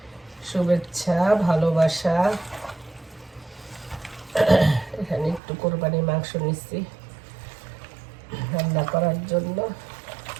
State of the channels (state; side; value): drops out; left; at 5.4 s